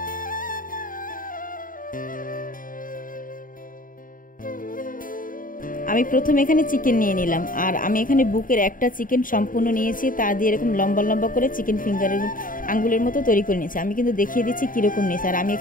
আমি প্রথমে এখানে চিকেন নিয়ে নিলাম, আর আমি এখানে বুকের একটা চিকেন সম্পূর্ণ নিয়েছি, তা দিয়ে এরকম লম্বা লম্বা করে চিকেন ফিঙ্গারের আঙ্গুলের মতো তৈরি করে নিয়েছি। আমি কিন্তু দেখিয়ে দিচ্ছি কীরকম নিয়েছি। আর আমি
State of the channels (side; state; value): right; late; 0.40 ms